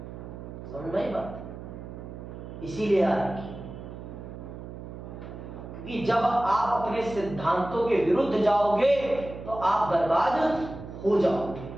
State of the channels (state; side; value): noise; right; hum, 11 dB below the sound